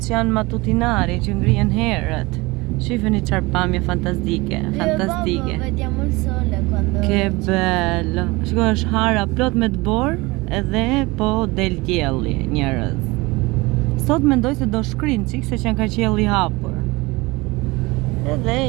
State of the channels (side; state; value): left; quieter; 23.1 dB